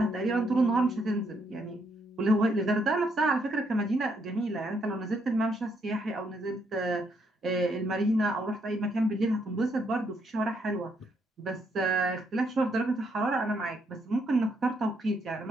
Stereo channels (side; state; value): both; normal; correlation 0.74